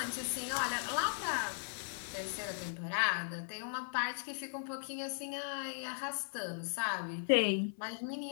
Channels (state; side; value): silent; right; 52 dB below the other